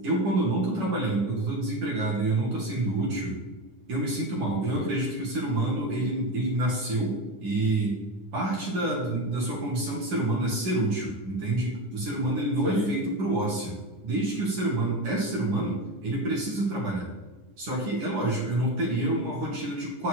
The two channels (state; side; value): late; left; 9.8 ms